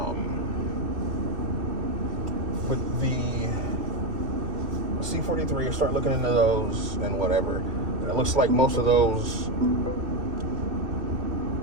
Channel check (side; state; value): left; late; 2.5 ms